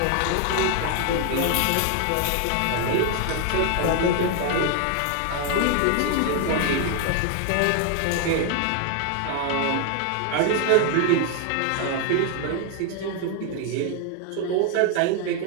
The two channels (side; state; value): both; different; correlation 0.01